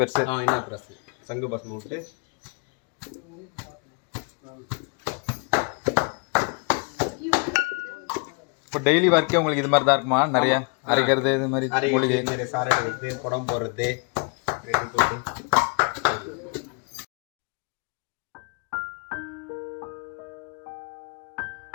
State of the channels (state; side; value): quieter; right; 35.5 dB